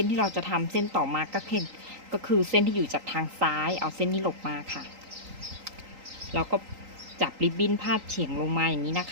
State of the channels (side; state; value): left; late; 3.8 ms